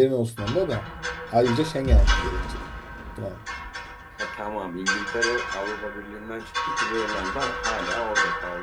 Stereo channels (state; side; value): identical; both; correlation 1.00